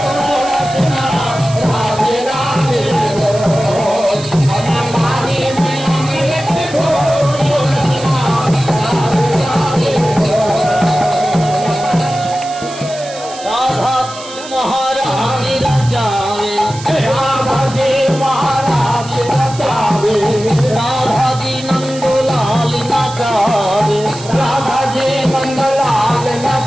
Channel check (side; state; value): right; noise; hiss, 15 dB below the sound